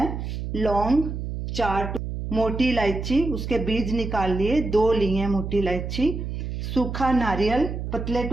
लौंग 4, मोटी इलायची उसके बीज निकाल लिए, 2 ली है मोटी इलायची। सूखा नारियल पतले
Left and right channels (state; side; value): noise; right; hum, 5 dB below the sound